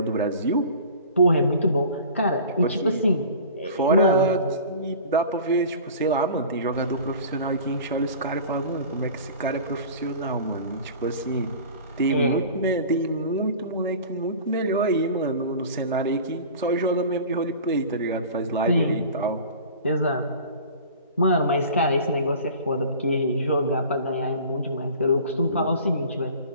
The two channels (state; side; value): inverted; both; correlation -0.40